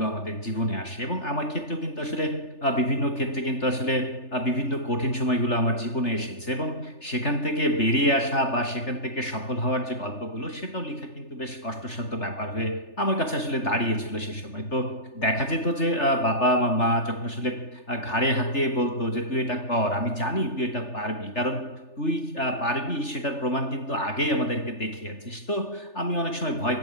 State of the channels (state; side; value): late; right; 3.4 ms